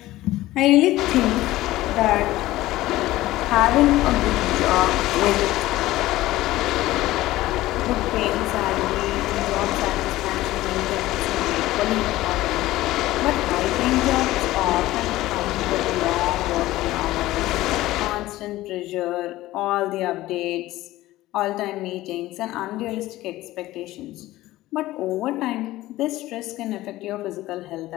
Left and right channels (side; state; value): right; quieter; 16.6 dB